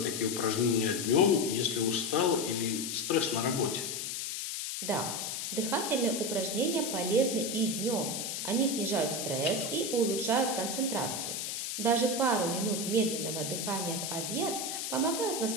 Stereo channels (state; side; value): noise; left; hiss, 4 dB below the sound